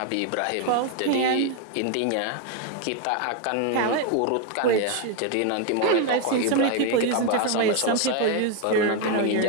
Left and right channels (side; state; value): both; different; correlation 0.01